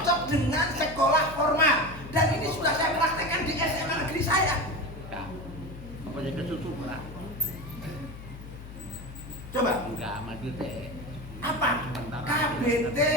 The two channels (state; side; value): noise; left; hum, 13 dB below the sound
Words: dengan sekolah formal. Dan ini sudah saya praktekkan di SMA negeri saya. Apa jadi kesusu lah? Coba. Enggak maju teh. Apa? KBT